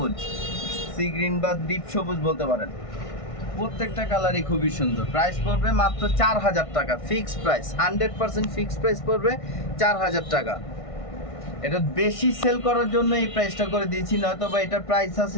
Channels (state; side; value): late; right; 1.5 ms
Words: সি গ্রিন বা ডিপ সবুজ বলতে পারেন। প্রত্যেকটা কালারই খুবই সুন্দর। প্রাইস পড়বে মাত্র 4000 টাকা, ফিক্সড প্রাইস, 100% ফিক্সড প্রাইস পড়বে 4000 টাকা। এটা বেশি সেল করার জন্য এই প্রাইসটা করে দিয়েছি, নয়তো বা এটার প্রাইস